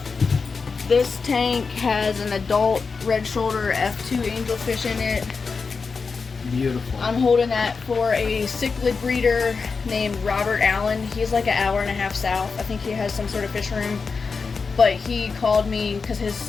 This tank has an adult red shoulder F2 angelfish in it. Beautiful. I'm holding that for a cichlid breeder named Robert Allen. He's like an hour and a half south. I think he has some sort of fish room. But he called me because his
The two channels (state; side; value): quieter; right; 4.9 dB